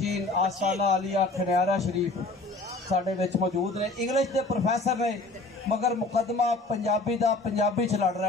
आस्ताना आलिया खनियारा शरीफ साढ़े विच मौजूद ने। इंग्लिश के प्रोफैसर ने मगर मुकदमा पंजाबी का पंजाबी च लड़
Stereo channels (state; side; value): quieter; right; 3.1 dB